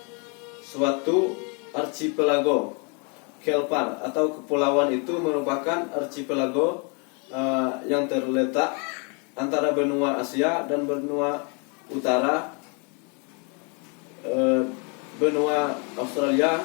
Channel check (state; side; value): quieter; right; 35.5 dB